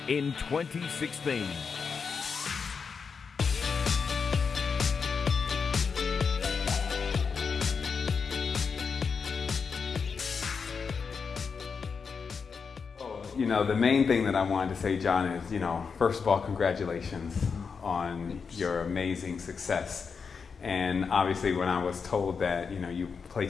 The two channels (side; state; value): right; quieter; 5.6 dB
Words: in 2016. You know, the main thing that I wanted to say, John, is, first of all, congratulations on your amazing success. And obviously when I was told that, you